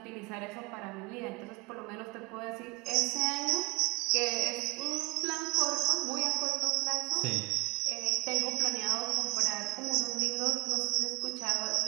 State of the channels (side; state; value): left; quieter; 26.2 dB